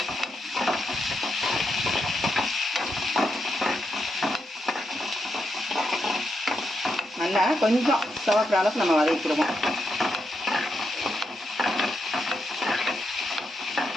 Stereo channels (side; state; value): both; normal; correlation 0.83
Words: நல்லா கொஞ்சம் சிவக்கிற அளவுக்கு நம்ம வதக்கிடுவோம்.